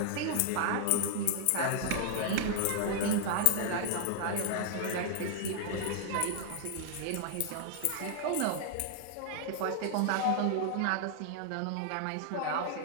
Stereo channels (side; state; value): both; different; correlation 0.00